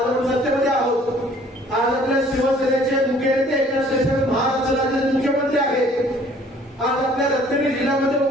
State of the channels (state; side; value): normal; both; correlation 0.56